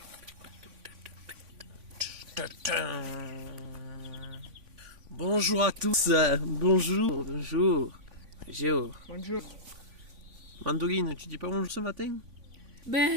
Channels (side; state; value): left; late; 3.5 ms